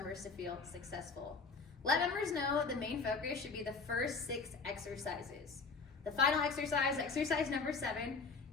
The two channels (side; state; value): right; quieter; 4.6 dB